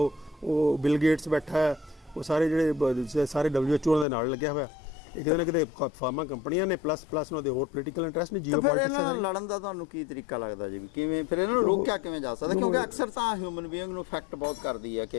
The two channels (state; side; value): drops out; right; at 4.0 s